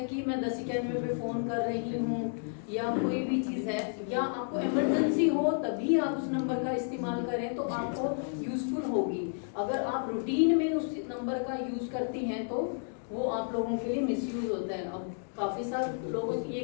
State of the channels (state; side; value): silent; right; digital silence